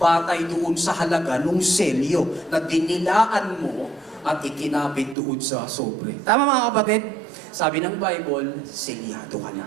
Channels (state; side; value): drops out; left; at 5.2 s